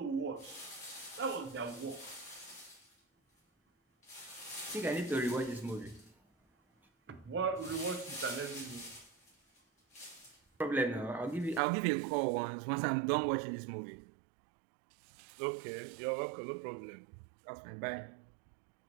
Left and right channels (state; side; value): drops out; left; at 11.6 s